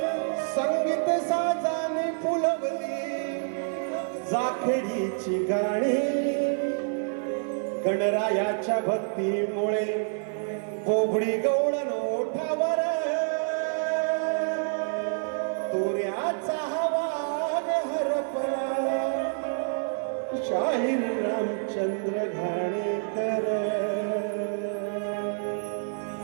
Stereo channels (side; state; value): left; silent; 56 dB below the other